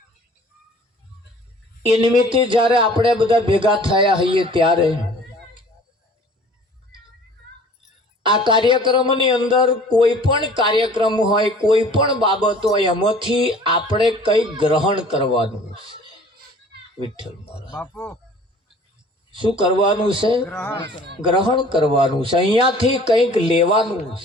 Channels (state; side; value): normal; both; correlation 0.49